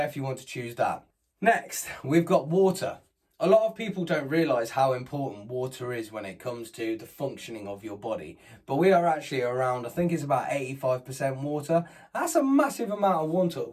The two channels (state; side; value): identical; both; correlation 1.00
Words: if you want to choose that. Next, we've got water. A lot of people don't realise how important water is when it comes to the functioning of your body. But we are actually around, I think it's about 85% water. That's a massive amount